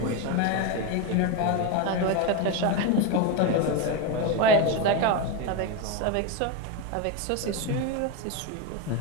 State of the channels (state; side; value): different; both; correlation 0.04